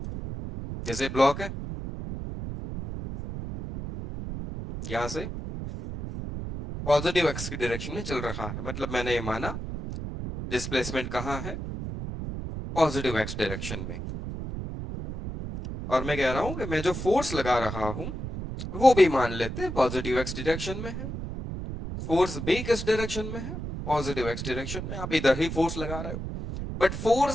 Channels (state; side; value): noise; right; rumble, 6 dB below the sound